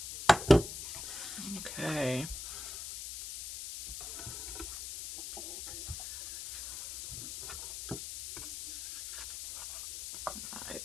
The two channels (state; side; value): noise; left; hiss, 8 dB below the sound